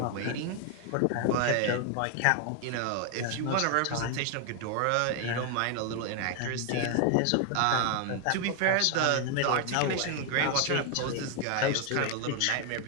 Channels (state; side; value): different; both; correlation 0.00